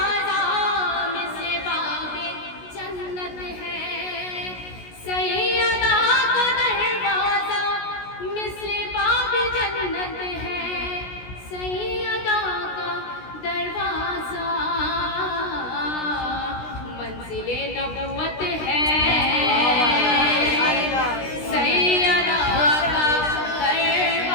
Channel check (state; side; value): late; right; 16 ms